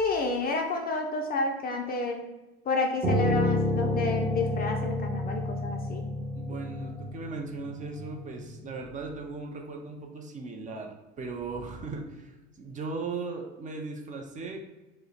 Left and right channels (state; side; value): normal; both; correlation 0.32